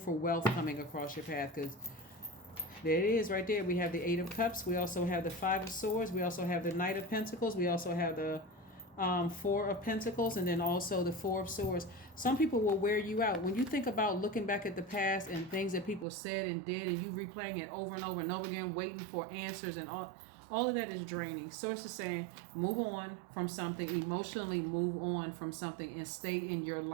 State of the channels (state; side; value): drops out; left; at 16.1 s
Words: wealth coming across your path, because there it is right there. We have the Eight of Cups. We also have the Five of Swords. We also have the Knight of Pentacles. We also have the Four of Pentacles, and then also the Four of Swords. Some people will wear you out. When you think about looking back at the past and things that people said and did, and you replaying it over and over and over again, waiting for answers and all of that is draining. Source is saying move on from something, emotionally move on from something, and stay in your